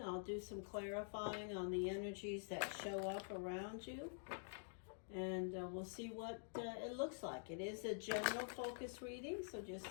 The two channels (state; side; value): silent; right; digital silence